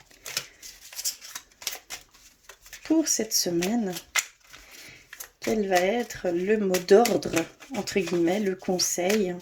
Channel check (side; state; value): both; identical; correlation 1.00